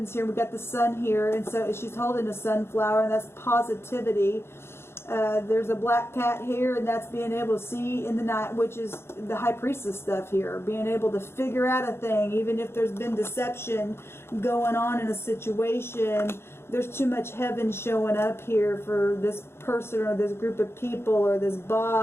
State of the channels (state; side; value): late; right; 0.12 ms